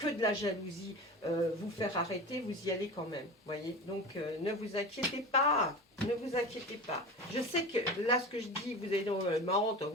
de la jalousie, vous faire arrêter, vous y allez quand même, voyez. Donc, ne vous inquiétez pas, ne vous inquiétez pas. Je sais que là, ce que je dis, vous allez dire, marrant, ne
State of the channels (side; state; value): both; normal; correlation 0.31